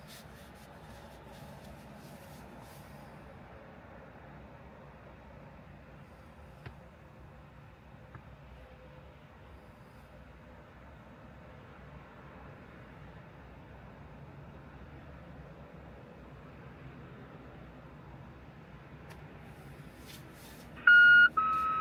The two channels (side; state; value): both; identical; correlation 1.00